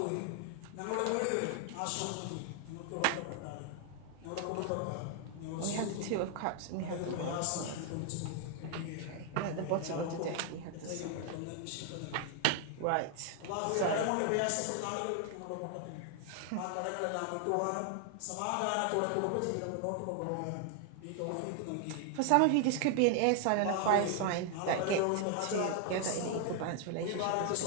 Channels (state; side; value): different; both; correlation 0.00